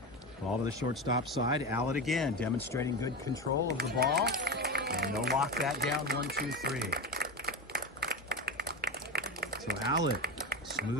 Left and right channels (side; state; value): both; normal; correlation 0.21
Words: Ball to the shortstop side. Allett again, demonstrating good control of the ball. And they'll lock that down 1-2-3. So Allett,